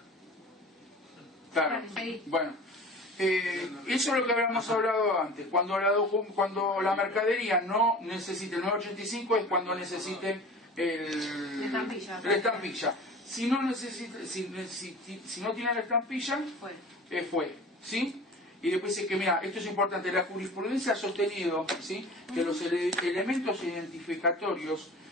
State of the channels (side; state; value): both; normal; correlation 0.39